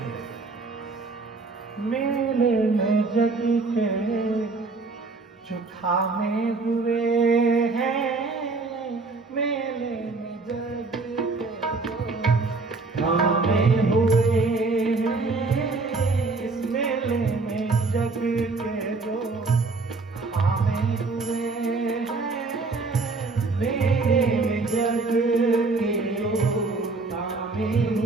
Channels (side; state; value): left; quieter; 3.8 dB